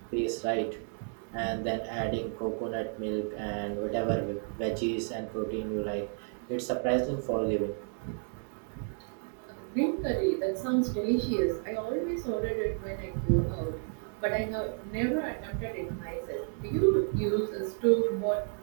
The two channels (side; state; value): left; silent; 57 dB below the other